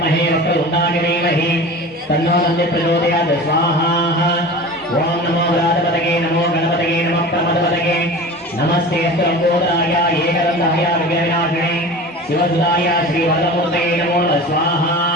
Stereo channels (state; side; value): normal; both; correlation 0.35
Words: वक्रतुंडाय धीमहि तन्नो दन्ति प्रचोदयात् स्वाहा। ओम नमो व्रातपतये नमो गणपतये नमः प्रमदपतये नमस्ते लंबोदराय एकदंताय विघ्नविनाशिने शिवसुताय श्रीवरदमूर्तये नमो स्वाहा।